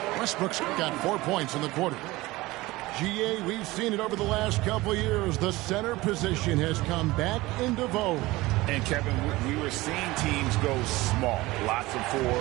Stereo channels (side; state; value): left; quieter; 19.9 dB